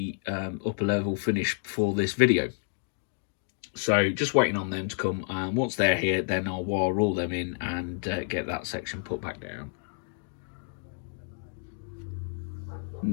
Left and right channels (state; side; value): silent; right; 58 dB below the other